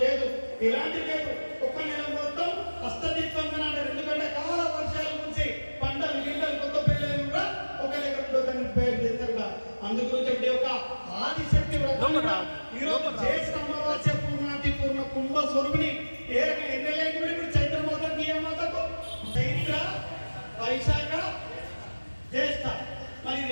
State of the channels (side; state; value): both; inverted; correlation -1.00